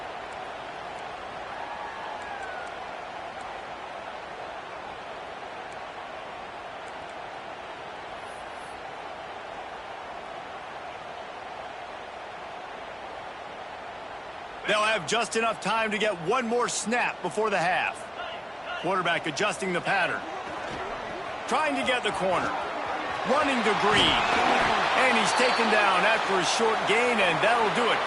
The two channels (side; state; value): both; identical; correlation 1.00